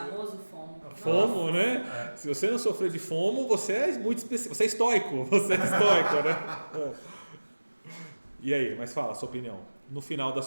FOMO. FOMO, né? Se você não sofrer de FOMO, você é muito específico. Você é estoico. Né? E aí, mas fala a sua opinião. No final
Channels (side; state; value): both; inverted; correlation -1.00